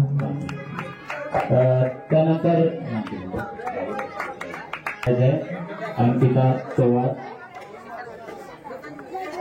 त्यानंतर अंकिता चव्हाण.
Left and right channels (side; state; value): both; identical; correlation 1.00